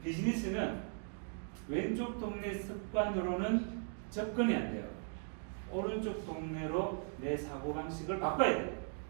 비즈니스는 왼쪽 동네 습관으로는 접근이 안 돼요. 오른쪽 동네로 내 사고방식을 바꿔야 돼요.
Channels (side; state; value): left; silent; 52 dB below the other